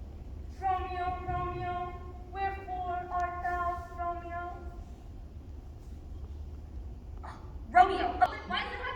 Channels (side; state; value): both; identical; correlation 1.00